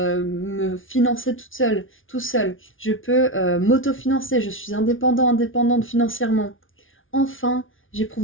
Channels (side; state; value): right; late; 0.57 ms